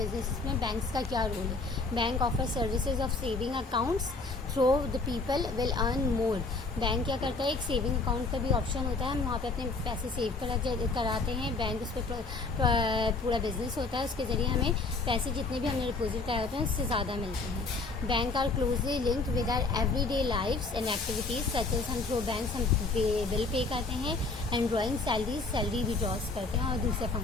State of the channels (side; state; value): right; quieter; 3.7 dB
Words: में बैंक्स का क्या रोल है? Bank offer services of saving accounts through the people will earn more. Bank क्या करता है? एक सेविंग अकाउंट का भी ऑप्शन होता है, हम वहाँ पे अपने पैसे सेव कराते हैं. बैंक उस पर पूरा बिजनेस होता है, उसके ज़रिए हमें पैसे जितने भी हमने डिपॉजिट कराए होते हैं उससे ज़्यादा मिलते हैं. Bank are closely linked with our everyday lifes and activities such as हम थ्रू बैंक्स हम बिल पे करते हैं, एंड ड्रॉइंग सैलरी विड्रॉज करते हैं और दूसरे